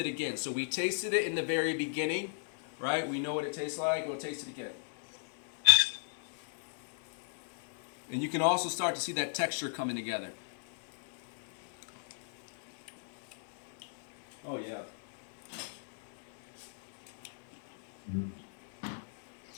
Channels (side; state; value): right; silent; digital silence